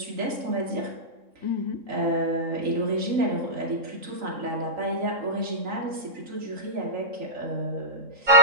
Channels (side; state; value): left; late; 3.8 ms